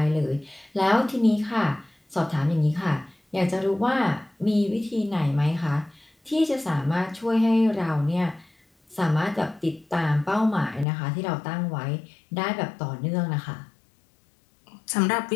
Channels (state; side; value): drops out; right; at 10.9 s